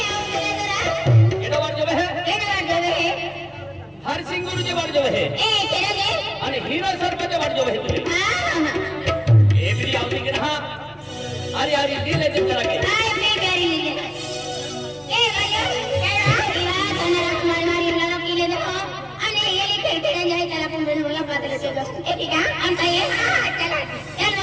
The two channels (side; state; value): both; identical; correlation 1.00